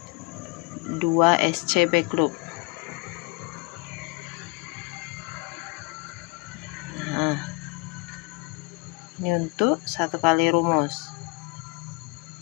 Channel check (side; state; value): right; quieter; 27.3 dB